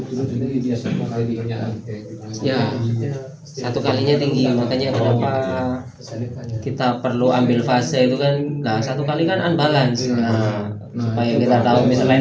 Ya, satu kalinya tinggi, makanya kenapa kita perlu ambil fase itu kan. Nah, satu kali kan unbalance. Nah, supaya kita tahu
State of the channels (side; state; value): both; identical; correlation 1.00